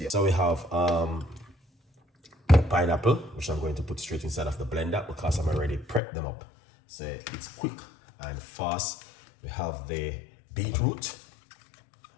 we have pineapple, which I'm going to put straight inside of the blender because I'm already prepped them up, so it's quick and fast. We have the beetroot,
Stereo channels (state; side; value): drops out; right; at 6.0 s